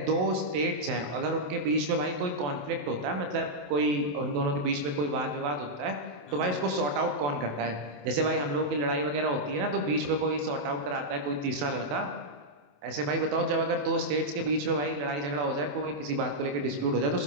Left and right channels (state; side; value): late; left; 27 ms